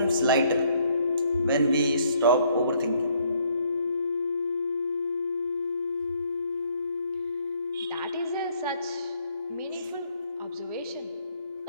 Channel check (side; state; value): both; inverted; correlation -0.66